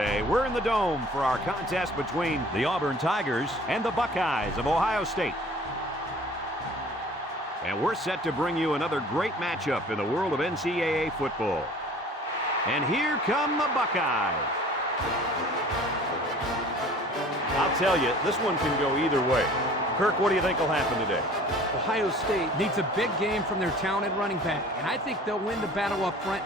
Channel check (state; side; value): normal; both; correlation 0.48